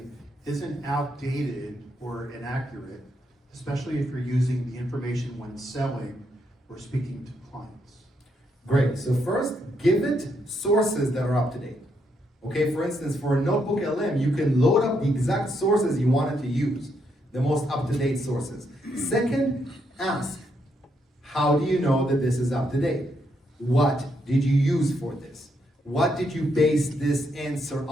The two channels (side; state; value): both; normal; correlation 0.77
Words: isn't outdated or inaccurate, especially if you're using the information when selling or speaking to clients? Great. So first, give it sources that are up to date. Okay, for instance, for a notebook LM, you can load up the exact sources you wanted to use, the most up-to-date sources. Second, ask, how do you know that this is up to date? What did you use for this? What did you base this answer